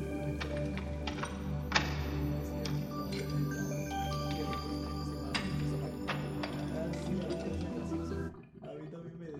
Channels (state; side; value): identical; both; correlation 1.00